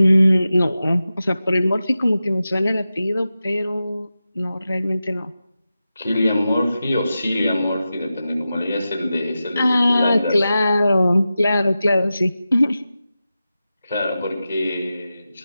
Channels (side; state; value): both; inverted; correlation -0.92